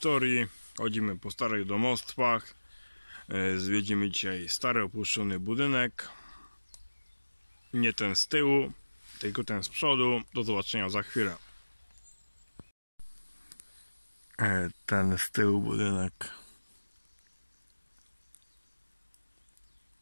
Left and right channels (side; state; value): both; inverted; correlation -1.00